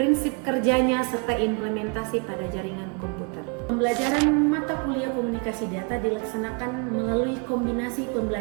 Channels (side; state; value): left; quieter; 35.1 dB